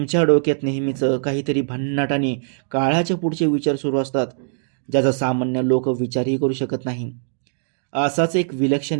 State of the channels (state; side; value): silent; left; digital silence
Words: डोक्यात नेहमीच काहीतरी भन्नाट आणि काळाच्या पुढचे विचार सुरू असतात, ज्याचा सामान्य लोक विचारही करू शकत नाही. असाच एक विलक्षण